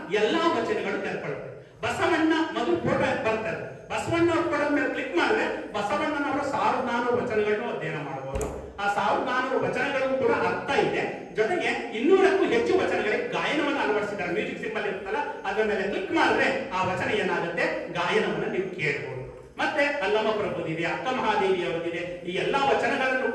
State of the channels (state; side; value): identical; both; correlation 1.00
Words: ಎಲ್ಲಾ ವಚನಗಳು ತೆರೆಕೊಳ್ಳುತ್ತೆ. ಬಸವಣ್ಣ ಮೊದಲು ಫೋಟೋ ಬರ್ತಾರೆ. ಬಸವಣ್ಣ ಫೋಟೋ ಮೇಲೆ ಕ್ಲಿಕ್ ಮಾಡಿದ್ರೆ ಬಸವಣ್ಣನವರ 1400 ವಚನಗಳನ್ನು ಅಧ್ಯಯನ ಮಾಡಬಹುದು. ಆ 1400 ವಚನಗಳಿಗೂ ಕೂಡ ಅರ್ಥ ಇದೆ. ಜೊತೆಗೆ 200ಕ್ಕೂ ಹೆಚ್ಚು ವಚನಗಳಿಗೆ ಗಾಯನವನ್ನು ಅಳವಡಿಸಿದ್ದಾರೆ. ಮ್ಯೂಸಿಕ್ ಸಿಂಬಲ್ ಇರುತ್ತಲ್ಲ, ಅದರ ಮೇಲೆ ಕ್ಲಿಕ್ ಮಾಡಿದ್ರೆ ಆ ವಚನ ಏನಾಗುತ್ತೆ, ಗಾಯನವನ್ನ ನೀವು ಕೇಳಬಹುದು. ಮತ್ತೆ ಅಲ್ಲಮ್ಮ ಪ್ರಭುದಿದೆ, ಅಕ್ಕ ಮಹಾದೇವಿ ಅವರಿದೆ. ಈ ಎಲ್ಲಾ ವಚನಗಳನ್ನು